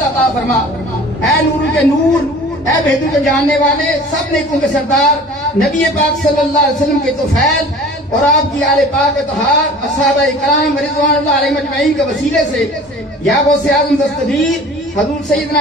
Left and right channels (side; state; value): both; normal; correlation 0.44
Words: عطا فرما اے نور کے نور اے بہدو کے جاننے والے سب نیکوں کے سردار نبی پاک صلی اللہ علیہ وسلم کے طفیل اور آپ کی آل پاک اطہار اصحابہ اکرام رضوان اللہ علیہ مجمعین کے وسیلے سے یا غوث اعظم دستگیر حضور